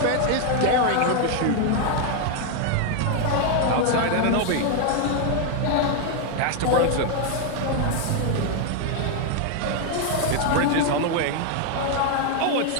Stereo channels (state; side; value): different; both; correlation 0.00